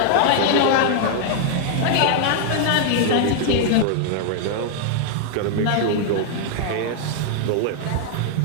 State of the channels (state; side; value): different; both; correlation 0.00